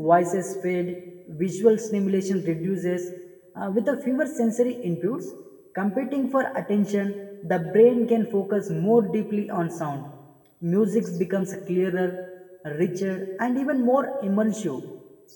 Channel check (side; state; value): both; identical; correlation 1.00